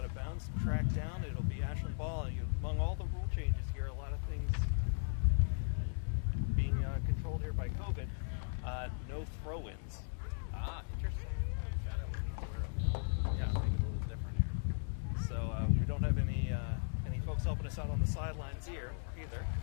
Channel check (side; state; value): right; silent; digital silence